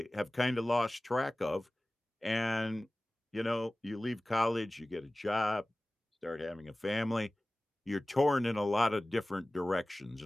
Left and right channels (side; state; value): both; normal; correlation 0.98